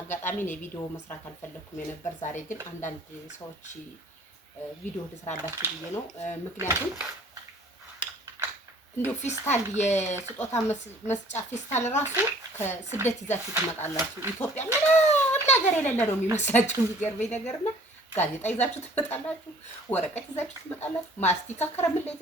ነው ቪዲዮ መስራት አልፈለኩም የነበር። ዛሬ ግን አንዳንድ ሰዎች ቪዲዮ ልስራላችሁ ብዬ ነው። ምክንያቱም እንዴው ፊስታል የስጦታ መስጫ ፊስታል ራሱ ከስደት ይዛችሁ ትመጣላችሁ። ኢትዮጵያ ምንም ነገር የሌለ ነው የሚመስላችሁ። የሚገርመኝ ነገርና ጋዜጣ ይዛችሁ ትመጣላችሁ፣ ወረቀት ይዛችሁ ትመጣላችሁ፣ ማስቲካ ከረሜላ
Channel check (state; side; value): normal; both; correlation 0.53